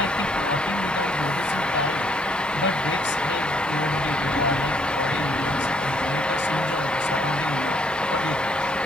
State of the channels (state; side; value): normal; both; correlation 0.68